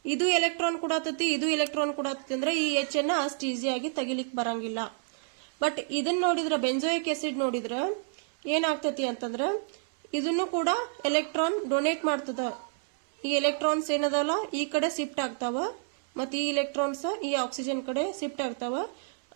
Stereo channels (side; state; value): left; silent; 58 dB below the other